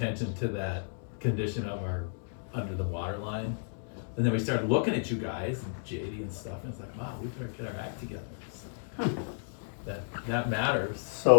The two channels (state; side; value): silent; right; digital silence